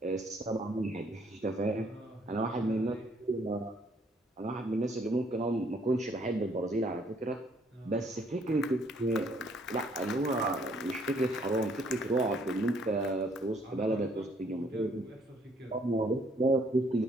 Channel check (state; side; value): normal; both; correlation 0.65